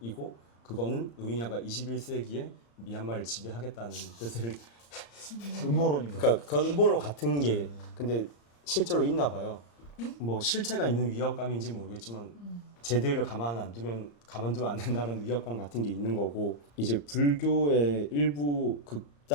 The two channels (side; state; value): right; late; 35 ms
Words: 그거는 로힝야가 21세기에 미얀마를 지배하겠다는 뜻을 음모론인가요? 그러니까 그건 음모론 같은 게 근데 실제로 있나 봐요. 뭐 실체가 있는 위협감인지 모르겠지만 쟤들을 가만두면 안 된다는 위협감 같은 게 있는 거고 이제 불교의 일부